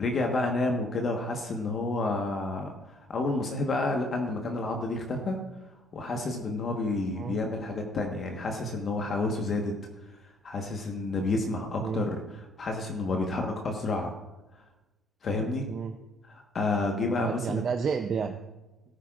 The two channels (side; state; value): both; normal; correlation 0.63